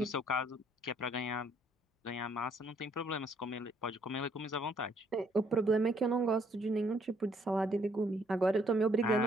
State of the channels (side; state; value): both; normal; correlation 0.66